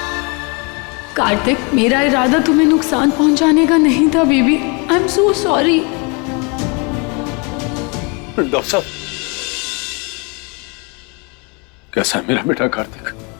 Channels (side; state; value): right; quieter; 31.8 dB